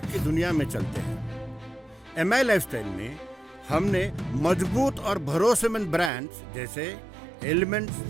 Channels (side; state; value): left; drops out; at 6.1 s